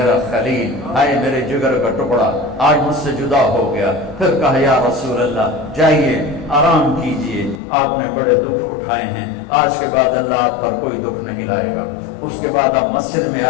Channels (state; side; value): drops out; right; at 7.6 s